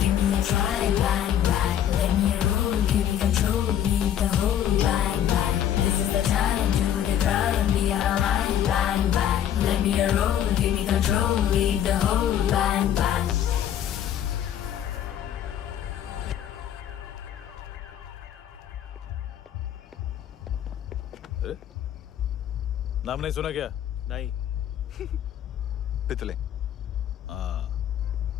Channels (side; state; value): right; quieter; 10.4 dB